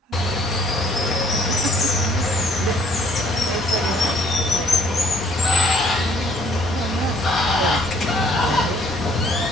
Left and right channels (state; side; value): normal; both; correlation 0.61